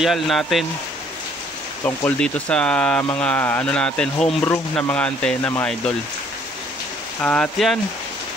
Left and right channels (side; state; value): both; normal; correlation 0.61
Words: natin tungkol dito sa mga natin, homebrew na mga antena mga idol. At yan,